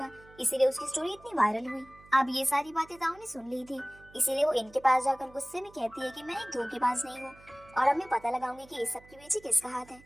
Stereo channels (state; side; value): noise; right; hum, 24 dB below the sound